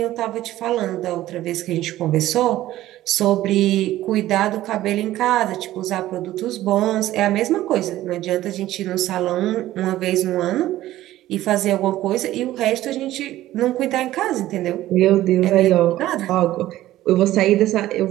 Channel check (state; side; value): quieter; left; 14.8 dB